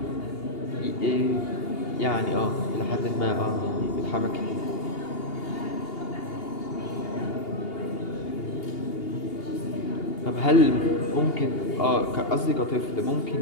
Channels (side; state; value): right; late; 2.8 ms